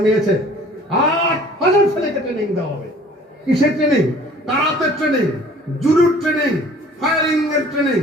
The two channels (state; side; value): normal; both; correlation 0.51